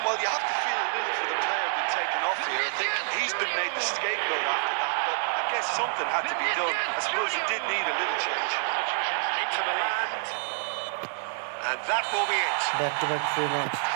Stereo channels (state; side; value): silent; left; digital silence